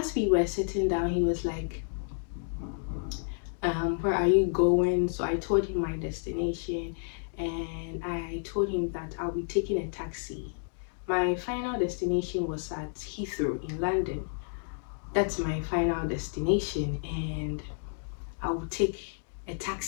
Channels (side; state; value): right; silent; digital silence